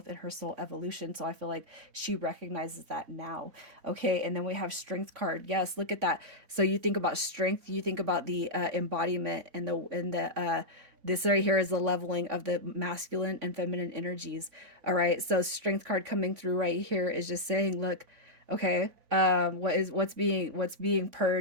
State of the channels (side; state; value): left; late; 3.5 ms